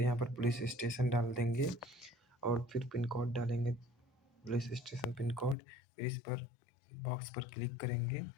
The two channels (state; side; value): drops out; right; at 5.6 s